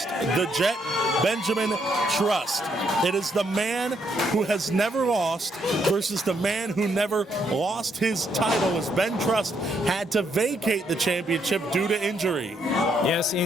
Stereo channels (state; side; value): normal; both; correlation 0.74